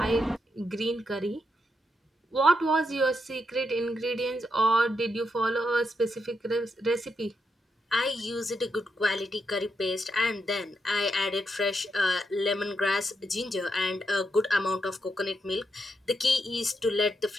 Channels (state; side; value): normal; both; correlation 0.82